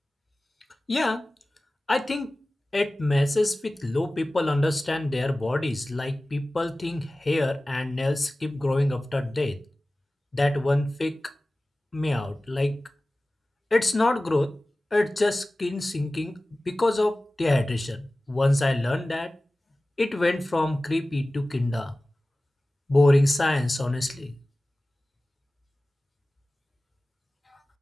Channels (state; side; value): normal; both; correlation 0.97